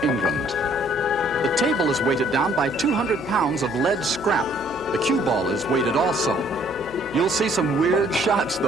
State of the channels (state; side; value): noise; left; hum, 19 dB below the sound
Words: England. The table is weighted down by 200 pounds of lead scrap. The cue ball is weighted also. You'll see some weird shots,